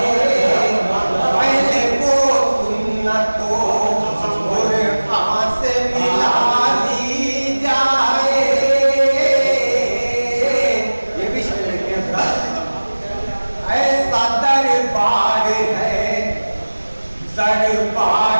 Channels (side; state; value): both; inverted; correlation -1.00